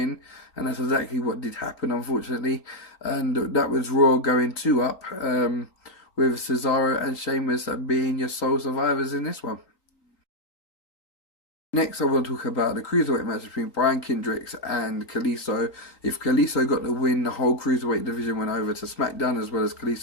and that's exactly what did happen, unfortunately. And that was Raw going 2-up, with Cesaro and Sheamus being your sole survivors in this one. Next, I want to talk about the Cruiserweight match between Brian Kendricks and Kalisto. If Kalisto got the win, the whole Cruiserweight division went over to SmackDown, as well as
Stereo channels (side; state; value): right; late; 4.0 ms